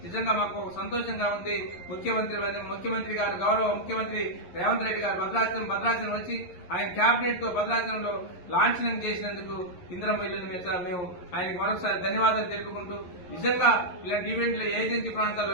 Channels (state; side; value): late; right; 11 ms